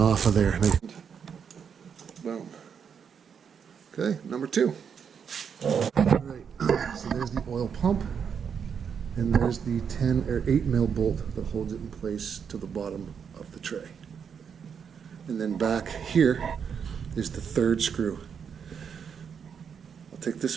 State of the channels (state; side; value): quieter; left; 7.1 dB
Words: of there. Boom. Okay, number 2. All right, so there's the oil pump. And there's the 10 or 8 mil bolt that holds it in place to the bottom of the tray. And then back here is the 3rd screw. I'll take this